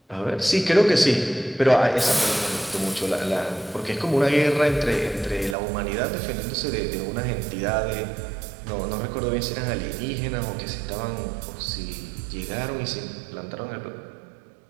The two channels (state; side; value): drops out; left; at 5.6 s